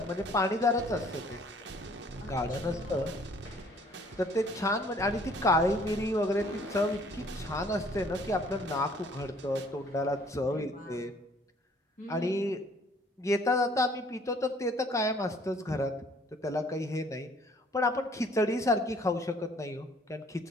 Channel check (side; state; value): both; normal; correlation 0.58